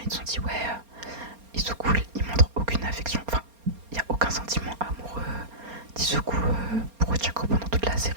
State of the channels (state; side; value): late; left; 4.3 ms